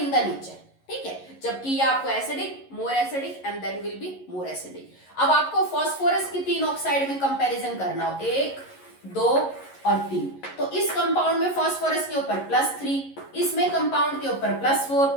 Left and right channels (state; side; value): late; right; 11 ms